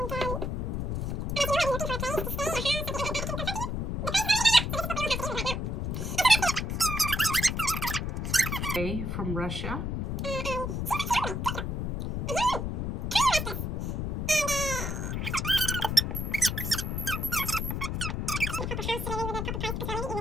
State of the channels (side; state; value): left; noise; rumble, 1 dB below the sound